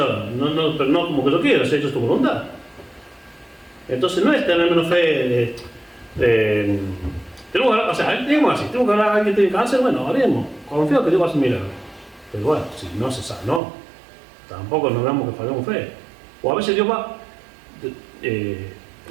no como que lo quiera, se ha hecho tu voluntad. Entonces no es tener menos fe, tenemos que hablar a alguien que tiene cáncer, bueno, haremos, confío que Dios va a hacer milagros. Pero bueno, si no se sabe, no, tampoco nos damos que fallemos fe. O a veces Dios va,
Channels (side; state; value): left; drops out; at 13.6 s